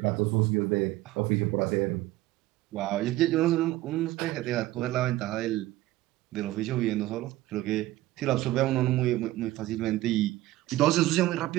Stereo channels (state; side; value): quieter; left; 16.7 dB